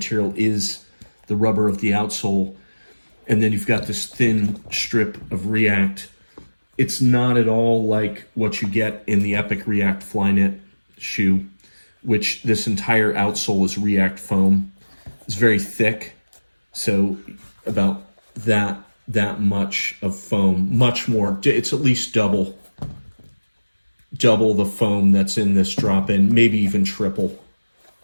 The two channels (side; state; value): both; inverted; correlation -1.00